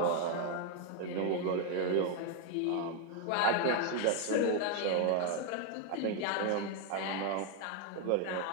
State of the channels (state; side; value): different; both; correlation 0.01